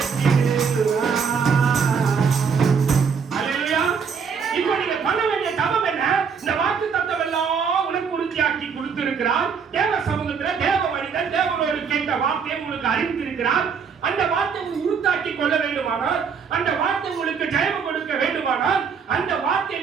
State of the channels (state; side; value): quieter; left; 6.2 dB